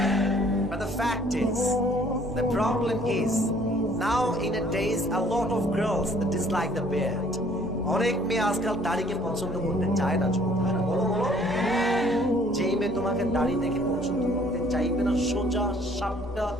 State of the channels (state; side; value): normal; both; correlation 0.58